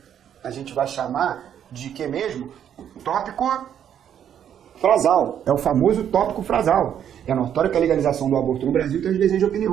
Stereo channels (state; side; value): quieter; left; 9.4 dB